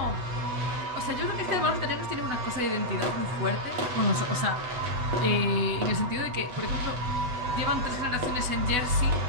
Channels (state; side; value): late; left; 8.1 ms